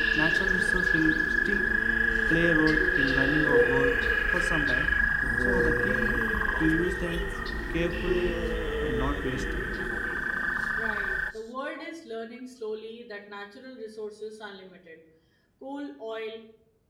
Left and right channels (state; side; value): identical; both; correlation 1.00